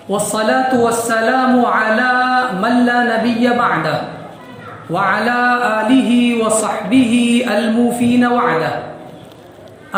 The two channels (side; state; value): both; identical; correlation 1.00